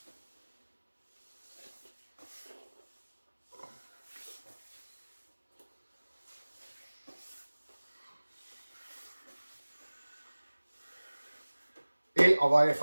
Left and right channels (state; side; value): inverted; both; correlation -1.00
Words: Et on va aller